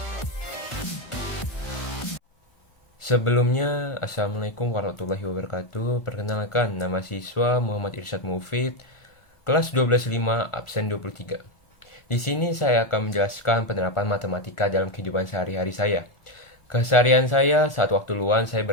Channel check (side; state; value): right; late; 1.4 ms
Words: Sebelumnya, Assalamualaikum warahmatullahi wabarakatuh. Perkenalkan, nama siswa Muhammad Irsyad Mufid, kelas 12.5, absen 23. Di sini saya akan menjelaskan penerapan matematika dalam kehidupan sehari-hari saya. Keseharian saya saat waktu luang saya